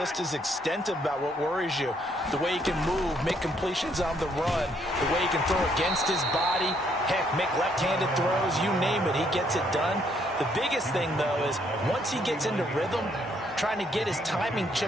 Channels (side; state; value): both; normal; correlation 0.70